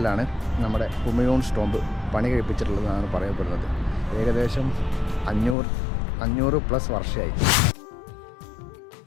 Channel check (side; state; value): right; drops out; at 5.6 s